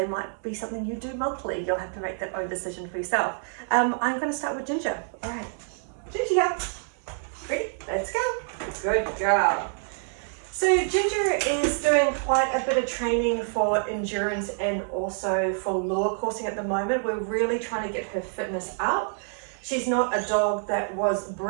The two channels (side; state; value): left; silent; 60 dB below the other